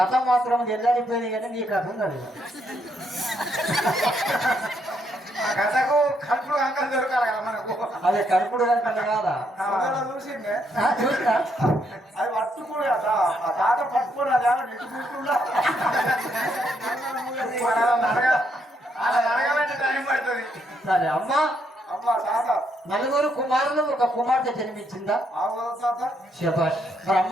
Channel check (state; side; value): normal; both; correlation 0.75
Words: మాత్రం ఎల్లాడిపోయింది కానీ నీ కథ ఉన్నది కథకు కడుపుడు అంకలు దొరకాలి కదా మనకు అదే కడుపుడు కనుక కాదా చూసిందే చూసినా అది పట్టుకుని తాత పట్టుకుని అది నెట్టు కూర్చుందా అడగాలంటే టైం పడుతుంది సరే అమ్మా అమ్మా తాత నలుగురు కుమారులు ఒక కుమార్తె జన్మించిందా తాత శభాష్ మరి